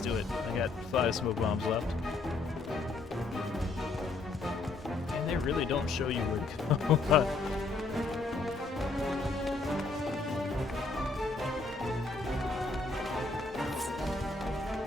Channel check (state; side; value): quieter; right; 3.6 dB